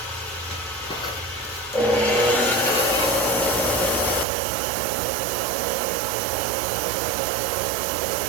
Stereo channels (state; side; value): drops out; left; at 4.2 s